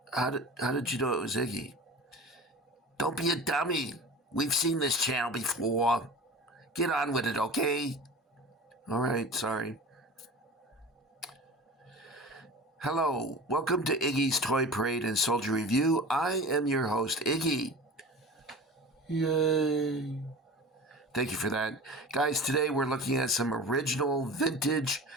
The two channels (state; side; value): normal; both; correlation 0.36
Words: How did you know it was Iggy? Don't be a dummy. We've seen this channel before. Get on with it, okay? All right, sorry. Hello, welcome to Iggy's Toy Parade and Soldier Review. I am your host, Iggy. Yay. Thank you for that. Guys, today we're looking at some original vintage